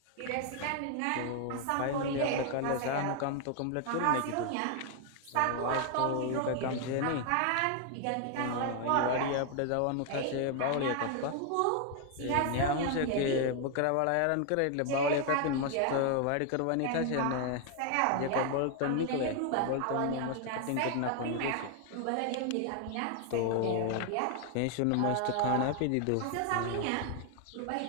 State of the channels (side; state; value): both; different; correlation 0.00